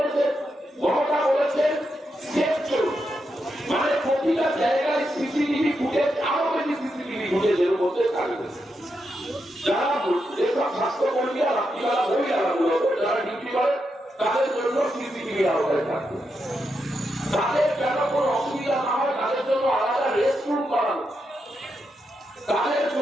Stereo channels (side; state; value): both; normal; correlation 0.84